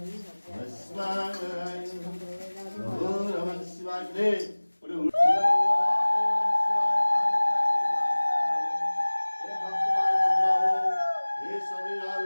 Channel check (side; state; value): both; inverted; correlation -1.00